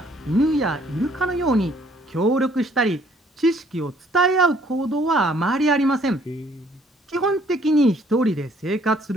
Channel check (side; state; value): both; normal; correlation 0.62